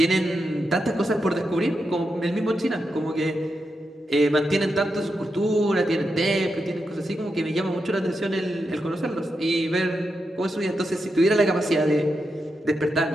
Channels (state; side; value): normal; both; correlation 0.86